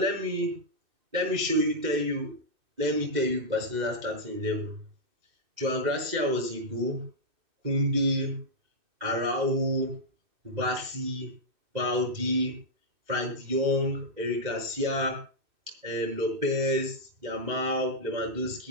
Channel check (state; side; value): late; left; 2.6 ms